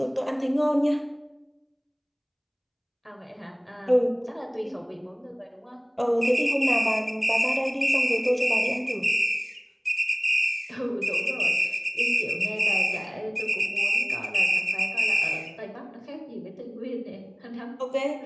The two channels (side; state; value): both; identical; correlation 1.00